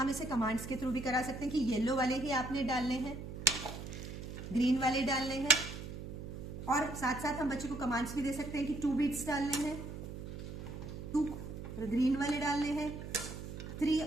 इसे कमांड्स के थ्रू भी करा सकते हैं कि येलो वाले ही आपने डालने हैं, ग्रीन वाले डालने हैं, और साथ साथ हम बच्चे को कमांड्स भी दे सकते हैं कि 2 बीट्स डालने हैं, 2 ग्रीन वाले डालने हैं, 3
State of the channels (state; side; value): noise; right; hum, 9 dB below the sound